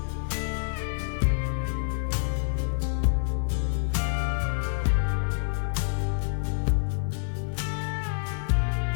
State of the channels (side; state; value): right; silent; 60 dB below the other